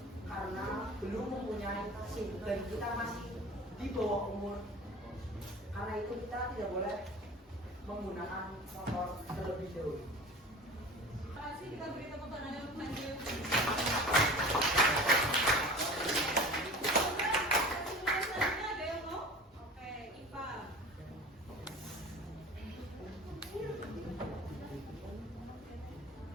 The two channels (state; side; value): normal; both; correlation 0.38